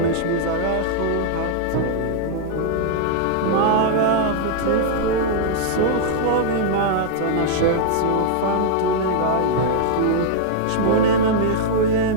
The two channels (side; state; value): both; different; correlation -0.01